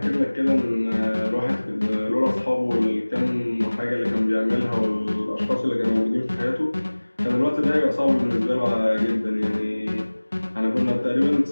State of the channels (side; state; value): both; inverted; correlation -1.00